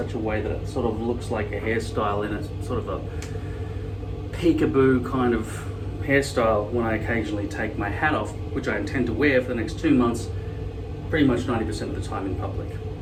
a way that it sort of looks like a hairstyle in a sort of a peekaboo kind of hairstyle when I occasionally take my hat off, which I intend to wear for the next 2 months, pretty much 90% of the time in public,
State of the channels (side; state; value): both; identical; correlation 1.00